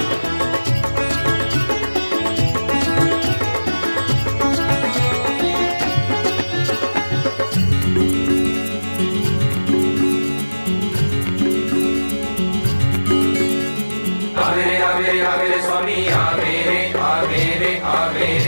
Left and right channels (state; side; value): inverted; both; correlation -1.00